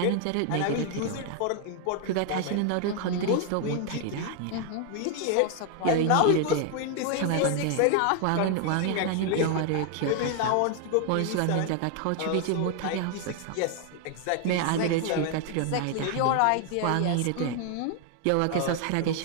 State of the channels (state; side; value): different; both; correlation 0.01